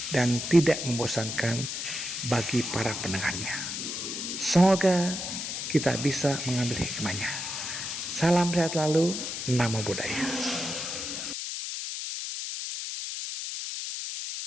dan tidak membosankan bagi para pendengarnya. Semoga kita bisa mengambil hikmahnya. Salam sehat selalu, Namo Buddhaya.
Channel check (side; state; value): left; noise; hiss, 5 dB below the sound